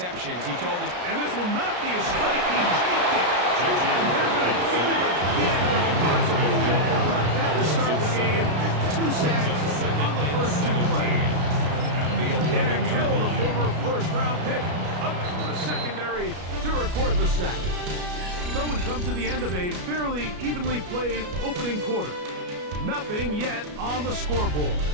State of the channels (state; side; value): late; left; 33 ms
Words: He told us, and this will not be a strike. He faked it. And they're going to get him again when possible. How about that to start the game? 2 sacks on the first 2 plays. Derek Hill, the former first-round pick, up from the secondary to record the sack. So we come to the end of a fairly evenly played opening quarter. Nothing yet on the scoreboard.